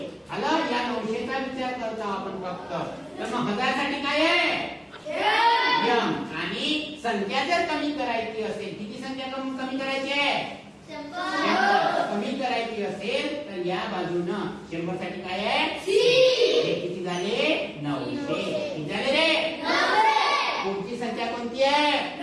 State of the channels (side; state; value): both; identical; correlation 1.00